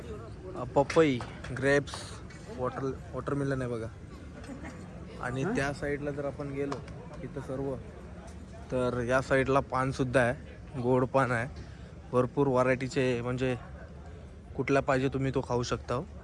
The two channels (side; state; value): both; identical; correlation 1.00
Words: पपई, ग्रेप्स, वॉटरमेलन आहे बघा. आणि त्या साईडला जर आपण गेलो इथं सर्व, तर या साईडला पानसुद्धा आहे, गोड पान आहे, भरपूर व्हरायटीचे, म्हणजे कुठला पाहिजे तुम्ही तो खाऊ शकता.